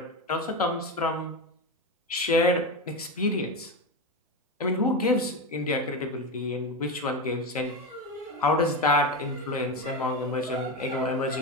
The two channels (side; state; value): both; normal; correlation 0.16